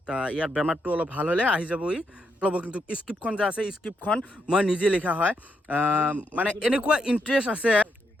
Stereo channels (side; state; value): both; normal; correlation 0.79